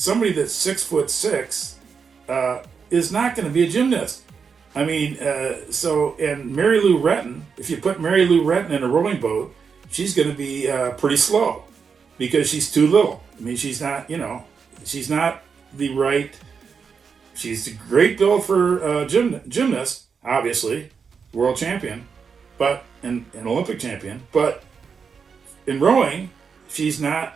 that's 6'6" is not going to be a gymnast. I mean, and Mary Lou Retton, if you put Mary Lou Retton in a rowing boat, she's going to be pretty slow because she's too little. I mean, she's not the right, she's a great build for gymnast, obviously, world champion, but an Olympic champion, but in rowing, she's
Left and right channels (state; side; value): quieter; left; 5.9 dB